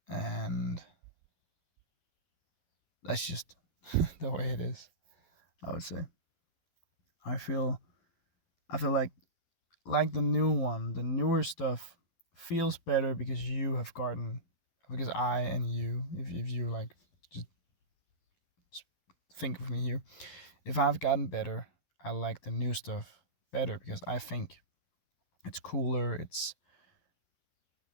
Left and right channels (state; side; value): late; right; 12 ms